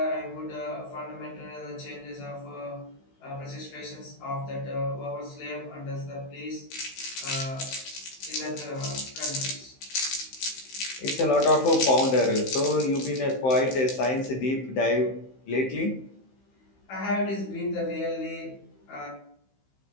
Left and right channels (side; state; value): right; late; 15 ms